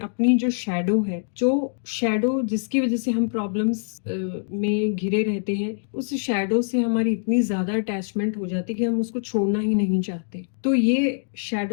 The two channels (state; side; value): silent; right; digital silence